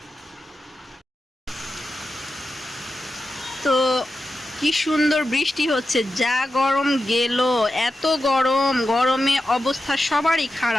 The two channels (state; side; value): normal; both; correlation 0.91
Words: তো কি সুন্দর বৃষ্টি হচ্ছে, যা গরম গেল, এত গরমে অবস্থা সবারই